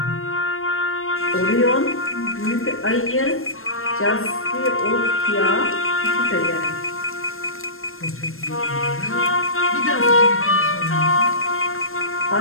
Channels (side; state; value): right; late; 0.61 ms